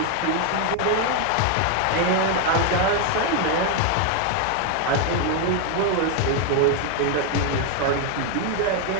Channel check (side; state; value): both; different; correlation 0.01